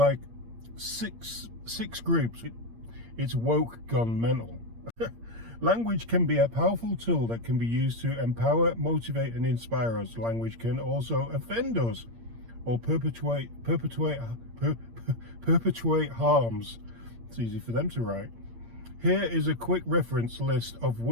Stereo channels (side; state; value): left; late; 8.7 ms